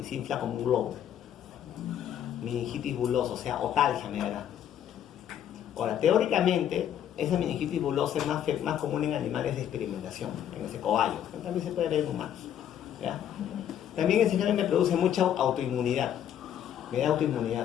y se infla como un globo. Meningitis bulosa, o sea, otalgia me dará. Ahora, teóricamente, esa meningitis bulosa es más común en animales de experimentación, en ese cobayo. También se puede ver en humanos. ¿Ya? También ese gen me produce mucha autoinmunidad. Me da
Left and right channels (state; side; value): quieter; right; 10.2 dB